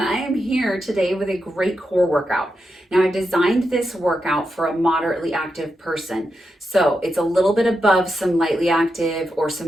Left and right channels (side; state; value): both; normal; correlation 0.87